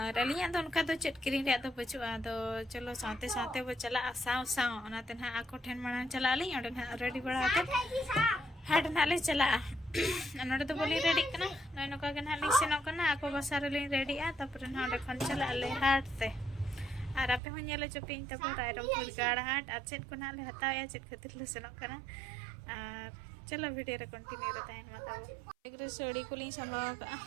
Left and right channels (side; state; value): left; drops out; at 17.4 s